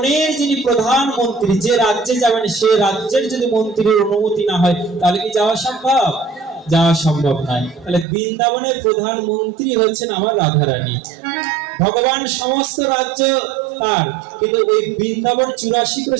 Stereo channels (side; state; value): left; drops out; at 8.1 s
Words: যিনি প্রধানমন্ত্রী, যে রাজ্যে যাবেন সে রাজ্যের যদি মন্ত্রীর অনুমতি না হয় তাহলে কি যাওয়া সম্ভব? যাওয়া সম্ভব নয়। তাহলে বৃন্দাবনের প্রধানমন্ত্রী হচ্ছেন আমার রাধারানী। ভগবান সমস্ত রাজ্য তার, কিন্তু ওই বৃন্দাবন 84